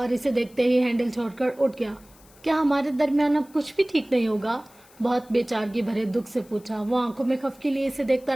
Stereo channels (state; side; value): noise; left; hiss, 27 dB below the sound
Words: اسے دیکھتے ہی ہینڈل چھوڑ کر اٹھ گیا۔ کیا ہمارے درمیان اب کچھ بھی ٹھیک نہیں ہوگا؟ بہت بے چارگی بھرے دکھ سے پوچھا۔ وہ آنکھوں میں خفگی لیے اسے دیکھتا